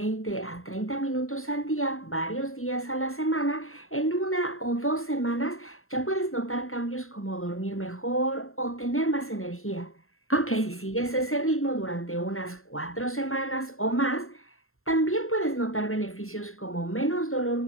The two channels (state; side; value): late; right; 0.62 ms